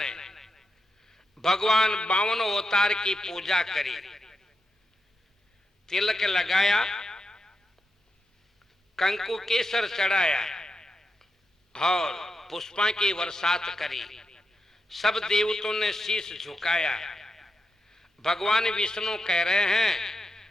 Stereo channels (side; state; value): both; normal; correlation 0.87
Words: भगवान 52 अवतार की पूजा करी, तिलक लगाया, कंकु केसर चढ़ाया और पुष्पा की बरसात करी। सब देवताओं ने शीश झुकाया। भगवान विष्णु कह रहे हैं